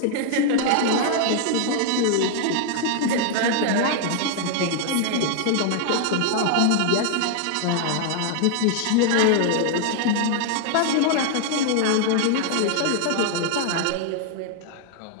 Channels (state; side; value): different; both; correlation 0.00